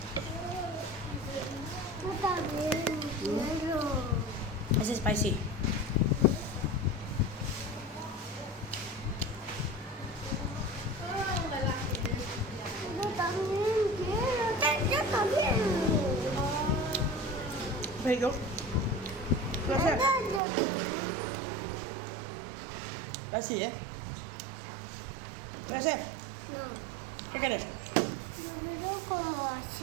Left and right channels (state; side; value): drops out; left; at 20.4 s